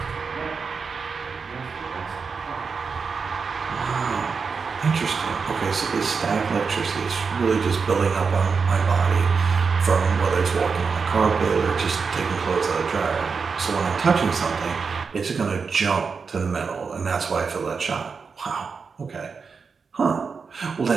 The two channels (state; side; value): quieter; left; 5.3 dB